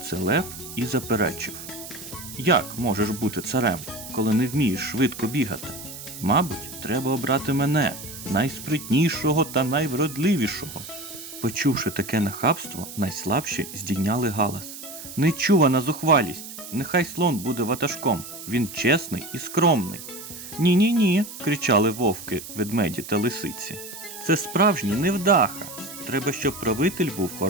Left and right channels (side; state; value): right; noise; hiss, 12 dB below the sound